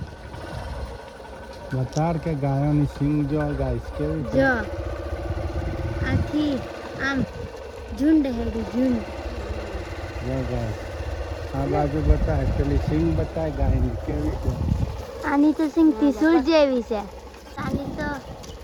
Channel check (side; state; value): both; identical; correlation 1.00